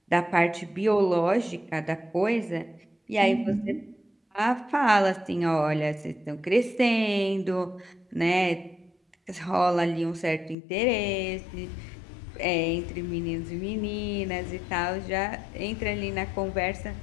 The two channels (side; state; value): right; drops out; at 10.6 s